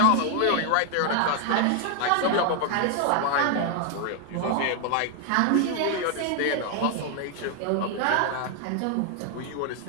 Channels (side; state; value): both; different; correlation 0.00